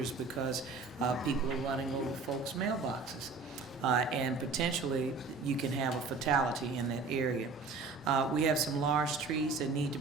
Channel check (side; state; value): left; quieter; 4.2 dB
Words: because people are running over folks' mailboxes. And potentially you can have a fatality in that area. We have some large trees that need to